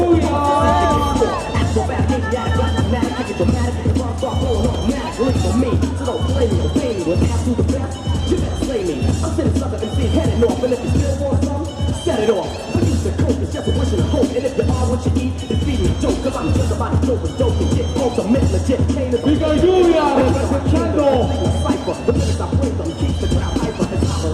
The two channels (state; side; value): identical; both; correlation 1.00